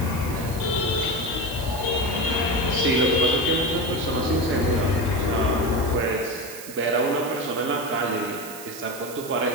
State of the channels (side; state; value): right; noise; hiss, 13 dB below the sound